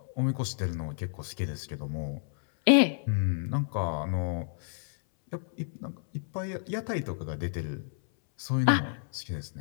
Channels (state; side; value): silent; right; 58 dB below the other